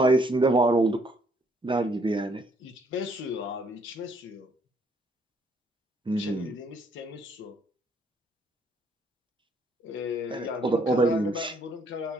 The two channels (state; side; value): normal; both; correlation 0.67